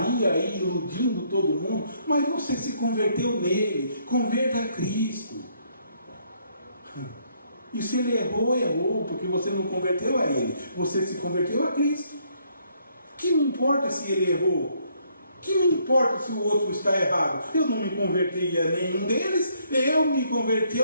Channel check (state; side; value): inverted; both; correlation -0.69